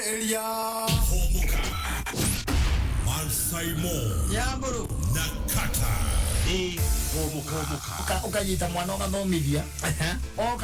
Mansaimo Yamburu na Kattaj. ukanyita mwana ugathomithia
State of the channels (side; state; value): both; identical; correlation 1.00